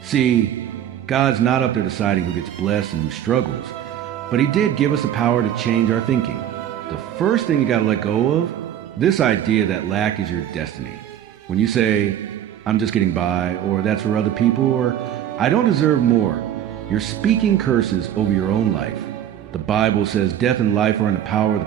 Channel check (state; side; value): quieter; left; 10.5 dB